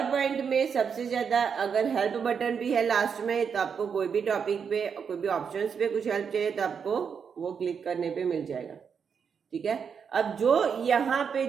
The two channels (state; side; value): quieter; left; 6.6 dB